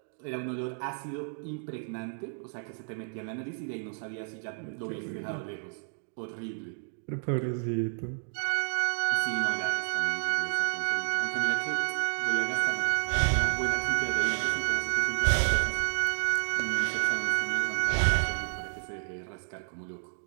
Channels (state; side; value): silent; left; 57 dB below the other